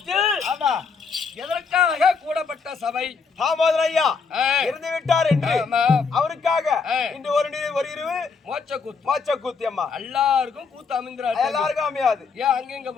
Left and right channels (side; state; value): right; quieter; 5.2 dB